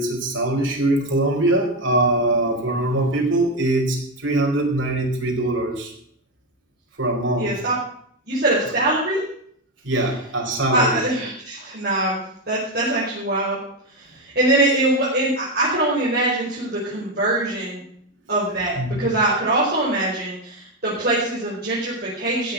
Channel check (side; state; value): both; normal; correlation 0.09